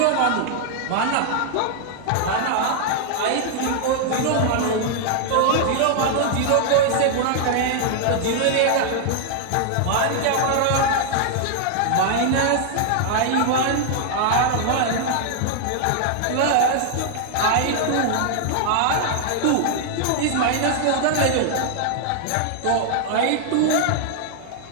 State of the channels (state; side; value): different; both; correlation -0.01